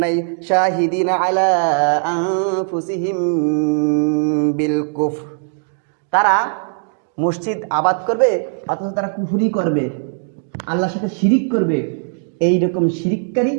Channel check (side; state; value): left; silent; digital silence